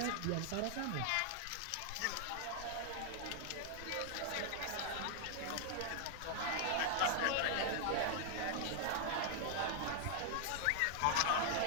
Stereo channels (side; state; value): both; different; correlation 0.00